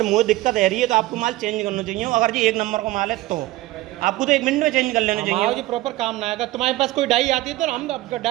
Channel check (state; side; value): quieter; left; 17.7 dB